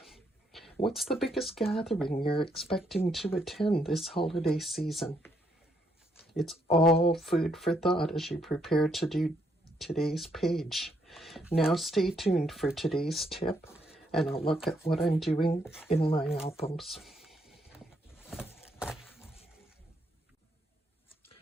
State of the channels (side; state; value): both; normal; correlation 0.74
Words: What's the biggest gathering you're expecting to attend this holiday season? It's all food for thought as you prepare to do today's page. Now stay tuned for today's tip and a look at what I'm doing in my albums.